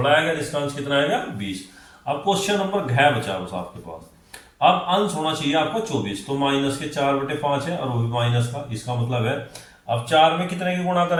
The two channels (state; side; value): identical; both; correlation 1.00